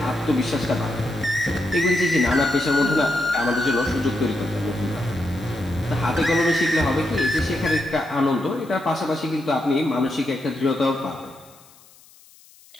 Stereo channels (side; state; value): left; noise; hiss, 26 dB below the sound